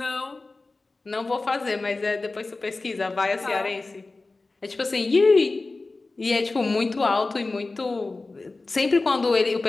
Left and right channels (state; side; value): quieter; right; 3.5 dB